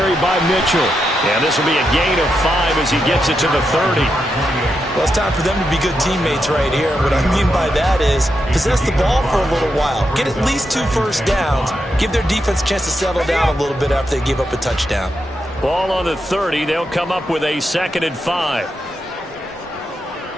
by Mitchell. And this will be a gain of 5 as he gets it to the 30. Well, it's time for them to be good teammates right here. What I mean by that is possess the ball for a little while. Get at least 2 first downs. Give their defense a chance to settle down a little bit after they give up a touchdown. Ball on the 30. They'll come up with a 2nd and 5.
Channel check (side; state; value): both; normal; correlation 0.84